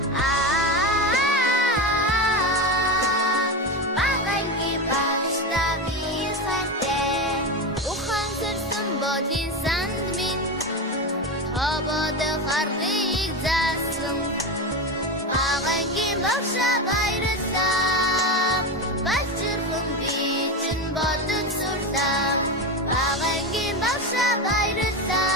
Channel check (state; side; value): normal; both; correlation 0.18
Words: багангийн багшаа би хайртай ухан сэрсэн бодин санд минь хободох аргыг заасан багангийн багшаа баярлалаа балчирхан би чинь бодож сурлаа багангийн багшаа